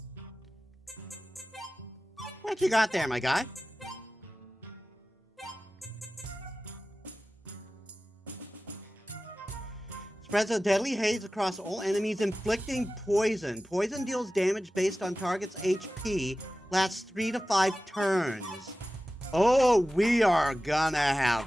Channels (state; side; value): normal; both; correlation 0.95